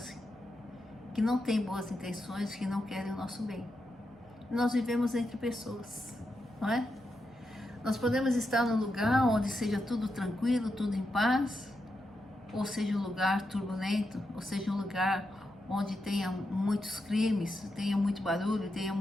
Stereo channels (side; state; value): both; normal; correlation 0.86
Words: que não têm boas intenções, que não querem o nosso bem. Nós vivemos entre pessoas, não é? Nós podemos estar num lugar onde seja tudo tranquilo, tudo em paz, ou seja um lugar turbulento, ou seja um lugar onde tenha muitos crimes, tenha muito barulho, tenha